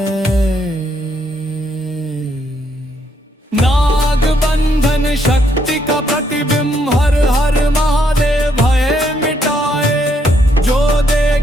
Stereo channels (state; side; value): normal; both; correlation 0.73